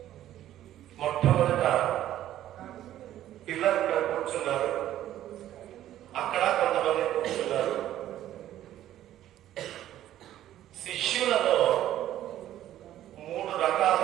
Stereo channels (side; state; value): left; quieter; 12.7 dB